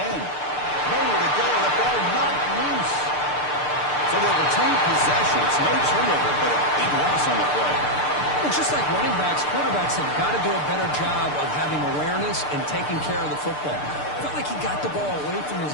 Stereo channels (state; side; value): late; right; 6.7 ms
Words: Nowhere to go. The ball knocked loose. So they'll retain possession. It's no turnover, but a big loss on the play. Well, just like running backs, quarterbacks have got to do a better job of having awareness and taking care of the football. Felt like he got the ball away from his